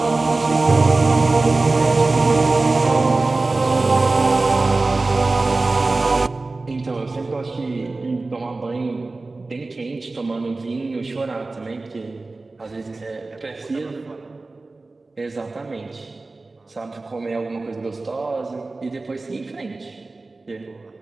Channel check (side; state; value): left; quieter; 3.4 dB